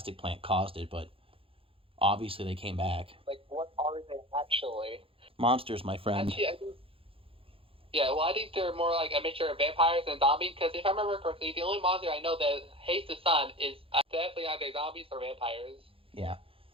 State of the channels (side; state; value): left; late; 0.27 ms